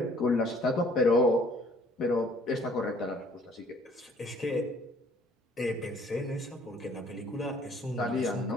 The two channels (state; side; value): normal; both; correlation 0.58